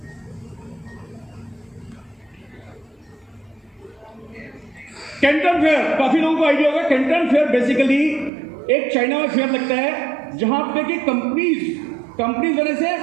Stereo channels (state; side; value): drops out; left; at 8.3 s